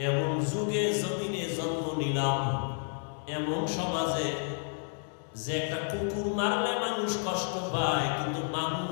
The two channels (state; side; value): silent; right; digital silence